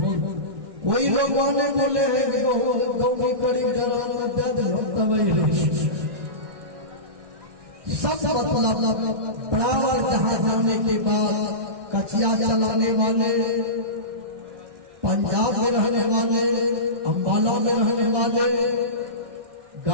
कोई लोग वाले बोले हैं कि गाँव में करीब सब मतलब बराबर जहाँ जाने के बाद कचिया चलाने वाले, पंजाब में रहने वाले, अम्बाला में रहने वाले,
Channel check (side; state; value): left; late; 1.6 ms